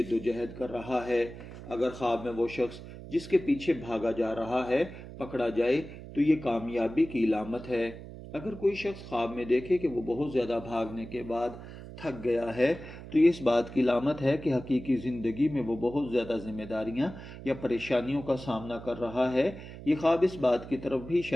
و جہد کر رہا ہے۔ اگر خواب میں وہ شخص جس کے پیچھے بھاگا جا رہا ہے پکڑا جائے تو یہ کامیابی کی علامت ہے۔ اگر کوئی شخص خواب میں دیکھے کہ وہ بہت زیادہ بھاگنے کے بعد تھک گیا ہے تو یہ اس بات کی علامت ہے کہ حقیقی زندگی میں وہ بہت زیادہ ذمہ داریاں یا پریشانیوں کا سامنا کر رہا ہے۔ یہ خواب اس بات کی طرف بھی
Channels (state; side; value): noise; right; hum, 13 dB below the sound